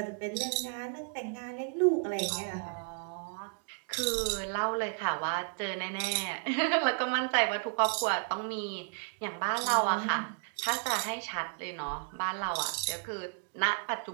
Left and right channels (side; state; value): left; quieter; 37.4 dB